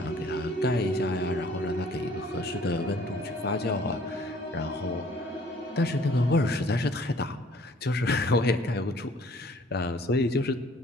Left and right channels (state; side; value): normal; both; correlation 0.56